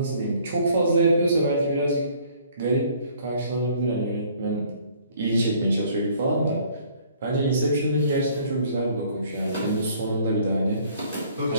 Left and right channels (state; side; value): inverted; both; correlation -0.58